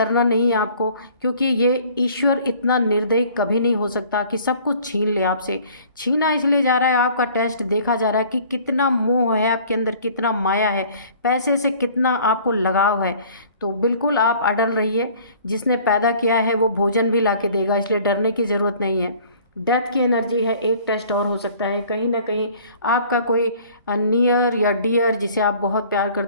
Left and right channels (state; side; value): inverted; both; correlation -0.52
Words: नहीं है आपको, क्योंकि ये ईश्वर इतना निर्दयी कभी नहीं हो सकता कि सब कुछ छीन ले आपसे। छीना इसलिए जा रहा है, आपका टेस्ट देखा जा रहा है कि कितना मोह है आपके अंदर, कितना माया है, पैसे से कितना आपको लगाव है। तो बिल्कुल आप अड़ल रहिए। जिसने पैदा किया है वो भोजन भी ला के देगा, इसलिए डरने की ज़रूरत नहीं है। डेथ की एनर्जी है, एक टेस्ट और हो सकता है। कहीं ना कहीं आपका कोई नियर या डियर, जिसे आप बहुत प्यार